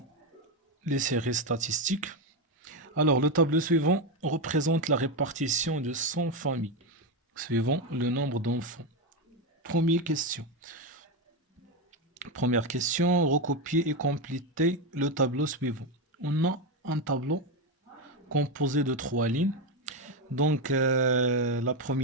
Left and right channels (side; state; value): both; normal; correlation 0.10